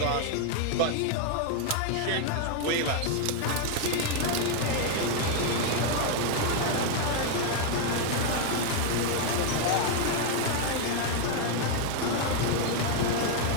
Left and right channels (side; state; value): both; different; correlation 0.01